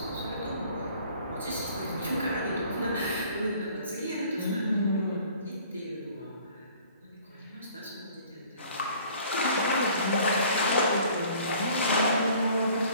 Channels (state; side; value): inverted; both; correlation -0.53